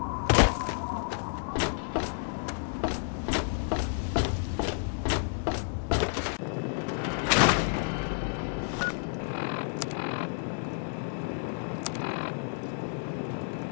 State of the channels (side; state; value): right; silent; digital silence